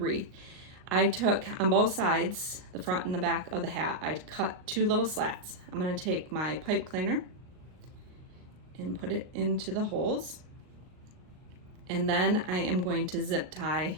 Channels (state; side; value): late; left; 38 ms